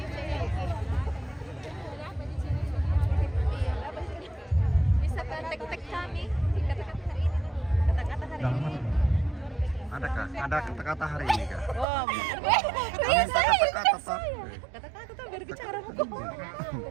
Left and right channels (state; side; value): drops out; left; at 11.9 s